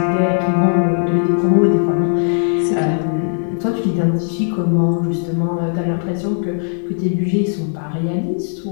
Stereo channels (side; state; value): right; silent; digital silence